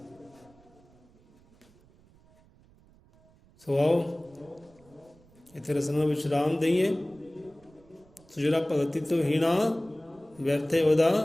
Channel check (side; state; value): right; noise; rumble, 28 dB below the sound